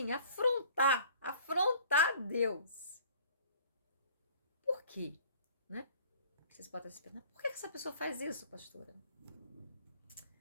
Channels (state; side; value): inverted; both; correlation -0.50